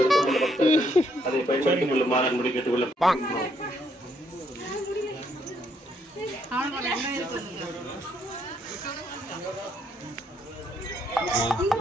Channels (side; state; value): both; normal; correlation 0.72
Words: பக்தர்கள் அதை பயன்படுத்திக் கொள்ளுமாறு அன்புடன் கேட்டுக்கொள்ளலாம்.